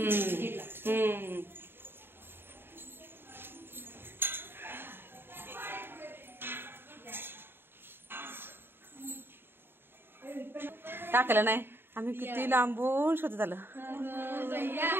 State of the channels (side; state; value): left; late; 0.10 ms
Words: टाकलं नाही. आम्ही किती लांबून शोधत आलं.